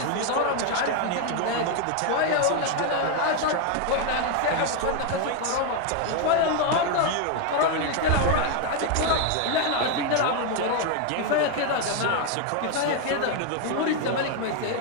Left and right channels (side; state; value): both; different; correlation 0.01